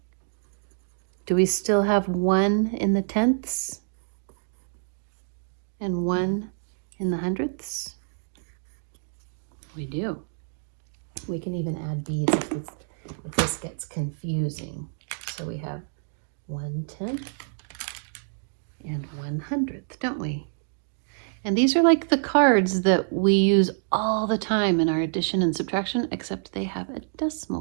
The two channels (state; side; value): silent; left; digital silence